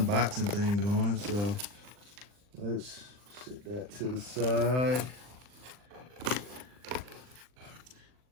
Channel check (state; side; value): late; left; 39 ms